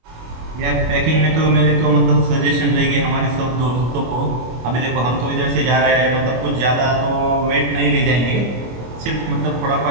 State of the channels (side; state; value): left; late; 25 ms